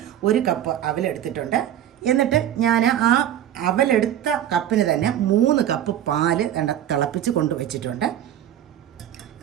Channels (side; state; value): left; quieter; 11.2 dB